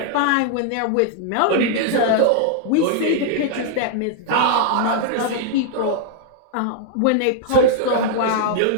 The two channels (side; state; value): both; different; correlation -0.01